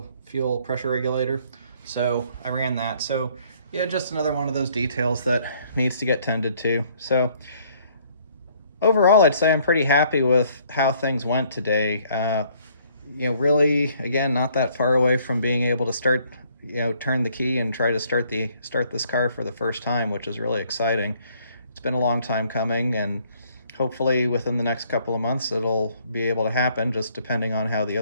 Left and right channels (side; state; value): both; inverted; correlation -0.63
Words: fuel pressure regulator. So I ran that. So yeah, just another one of those details that needs to get tended to. So overall, I'd say I'm pretty happy with how things went today. Really, again, not that far away from being able to start, turn the key and try to start this car for the first time, which is really exciting. It's been a long time coming, and hopefully within the next couple of months, it'll be able to happen, just depending on how the